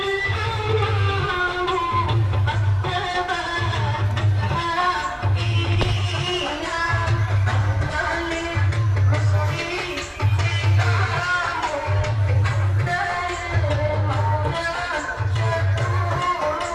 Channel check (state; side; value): identical; both; correlation 1.00